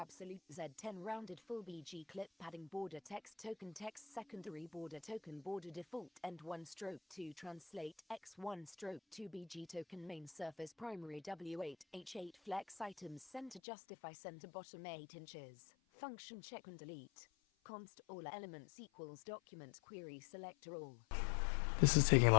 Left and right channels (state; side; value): drops out; right; at 13.6 s